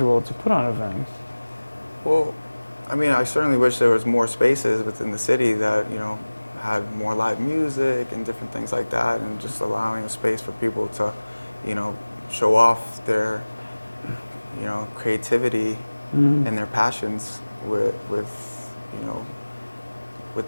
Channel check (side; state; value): both; inverted; correlation -1.00